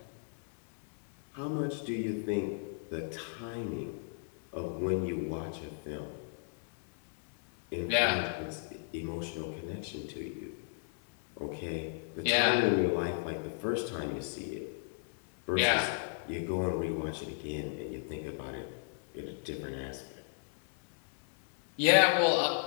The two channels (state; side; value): silent; right; 55 dB below the other